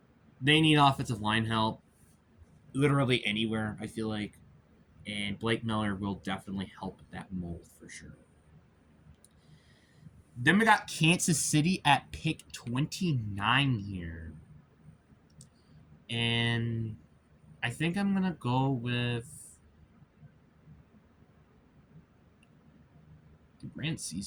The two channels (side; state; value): both; identical; correlation 1.00